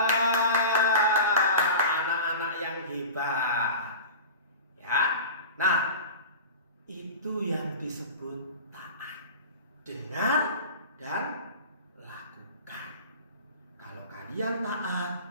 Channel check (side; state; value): both; inverted; correlation -0.33